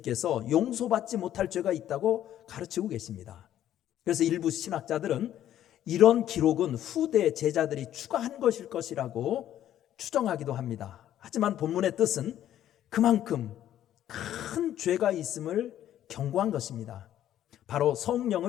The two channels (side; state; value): right; quieter; 11.7 dB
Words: 용서받지 못할 죄가 있다고 가르치고 계십니다. 그래서 일부 신학자들은 이런 기록은 후대 제자들이 추가한 것일 것이라고 추정하기도 합니다. 하지만 본문의 뜻은 그만큼 큰 죄가 있음을 경고한 것입니다. 바로